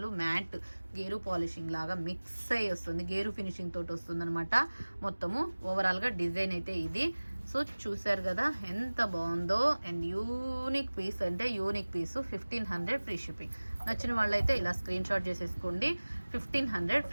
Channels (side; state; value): both; inverted; correlation -1.00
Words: మ్యాట్ గేరు పాలిషింగ్ లాగా మిక్స్ అయ్యి వస్తుంది, గేరు ఫినిషింగ్ తోటి వస్తుంది అనమాట. మొత్తము ఓవరాల్గా డిజైన్ అయితే ఇది. సో చూసారు కదా ఎంత బాగుందో. అండ్ యూనిక్ పీస్ అంటే యూనిక్ పీసు. 1500 ఫ్రీ షిప్పింగ్. నచ్చిన వాళ్ళైతే ఇలా స్క్రీన్ షాట్ చేసేసుకోండి. 1500